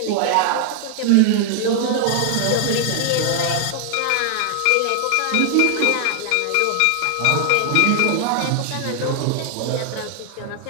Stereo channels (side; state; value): both; different; correlation 0.00